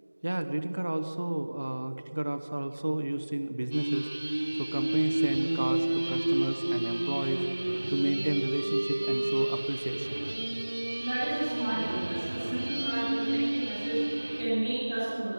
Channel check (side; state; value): both; inverted; correlation -1.00